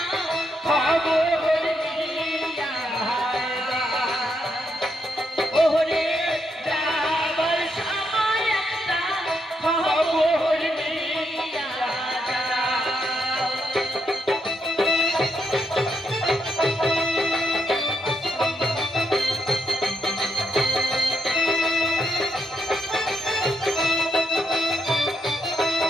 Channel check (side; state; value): both; normal; correlation 0.79